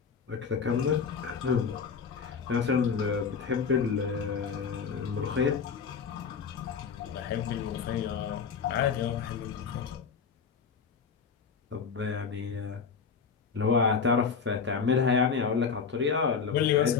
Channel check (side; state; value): right; quieter; 6.0 dB